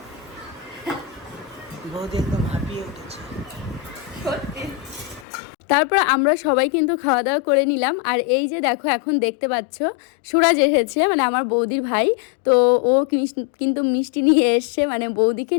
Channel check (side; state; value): right; drops out; at 5.2 s